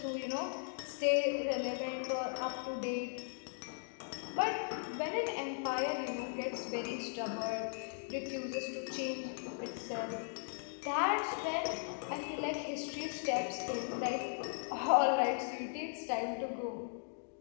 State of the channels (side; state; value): right; silent; digital silence